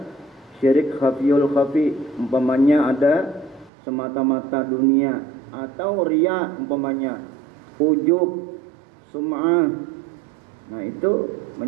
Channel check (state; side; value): drops out; left; at 3.7 s